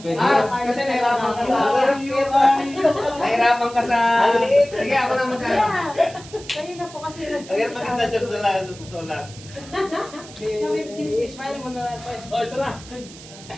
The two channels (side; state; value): right; noise; hiss, 18 dB below the sound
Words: Carlos Kasi nahirapan ka sa Nahirapan ka sa... Sige, ako na magkano. Yeah. Kayo na po kasi Ang hirap maganda siya sa lang, sa totoo lang. I-smile mo na lang, Pres. Oh, ito na.